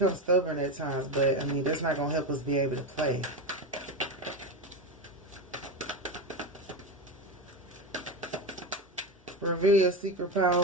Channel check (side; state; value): both; normal; correlation 0.17